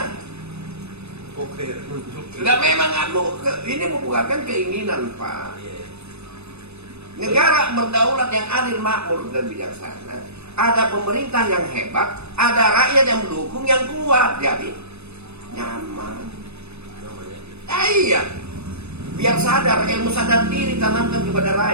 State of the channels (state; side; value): late; left; 0.80 ms